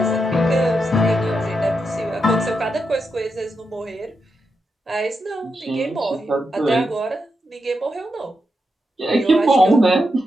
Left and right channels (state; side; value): normal; both; correlation 0.85